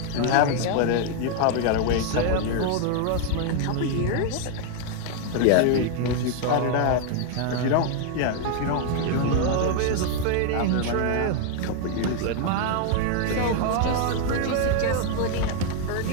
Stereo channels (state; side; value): different; both; correlation 0.00